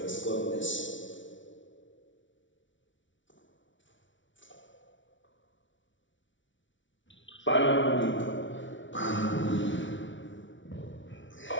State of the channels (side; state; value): right; late; 0.56 ms